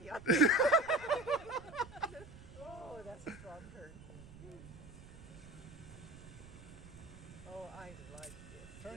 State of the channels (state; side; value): noise; right; rumble, 17 dB below the sound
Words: on me. Oh, that's a strong turn. Oh, I like this.